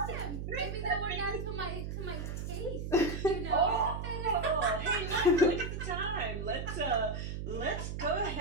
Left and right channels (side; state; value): right; noise; hum, 5 dB below the sound